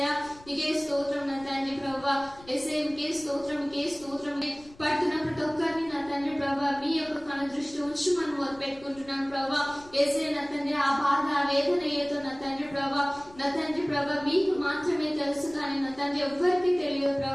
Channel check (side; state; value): left; noise; rumble, 23 dB below the sound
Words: మీకే స్తోత్రం నా తండ్రి ప్రభా యేసయ్య మీకే స్తోత్రం, మీకే స్తోత్రం. పడుతున్న ప్రతి ఒక్కరిని నా తండ్రి ప్రభా మీ యొక్క కను దృష్టి ఉంచి మనం మొదలుపెట్టుకుంటున్నాను ప్రభా. యేసయ్య నా తండ్రి ఆ బాధ ఆ వేదన ఏదో నా తండ్రి ప్రభా, నా తండ్రి ప్రభా మీకు మాత్రమే తెలుసు, కానీ నా తండ్రి ఎవ్వరికి తెలియదు